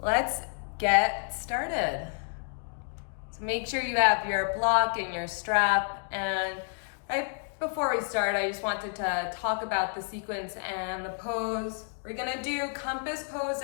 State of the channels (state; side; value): silent; right; 58 dB below the other